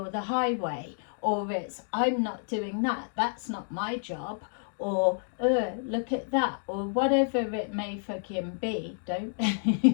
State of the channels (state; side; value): silent; right; digital silence